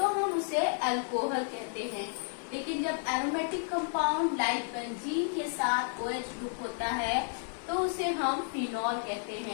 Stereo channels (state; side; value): silent; right; 56 dB below the other